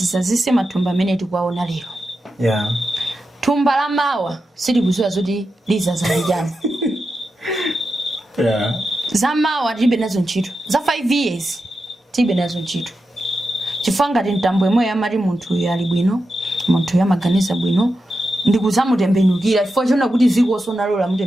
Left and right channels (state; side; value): normal; both; correlation 0.89